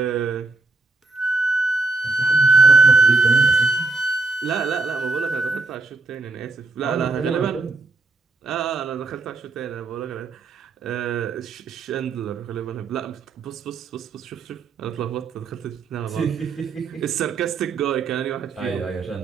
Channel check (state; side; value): quieter; left; 3.5 dB